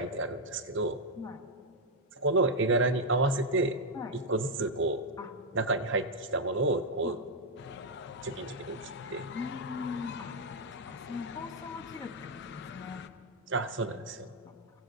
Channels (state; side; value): normal; both; correlation -0.01